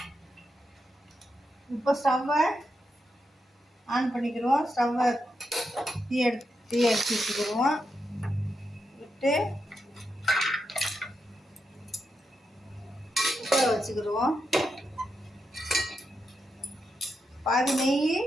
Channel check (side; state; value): both; normal; correlation 0.85